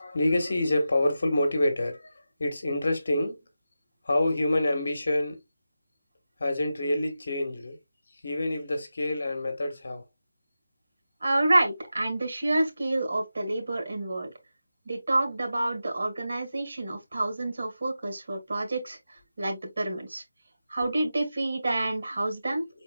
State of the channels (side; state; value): both; inverted; correlation -0.91